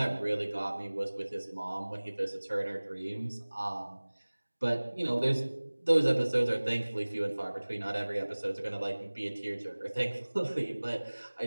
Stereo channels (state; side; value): inverted; both; correlation -1.00